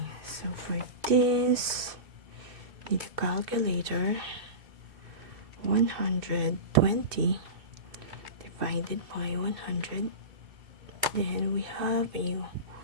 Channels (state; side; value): late; left; 2.6 ms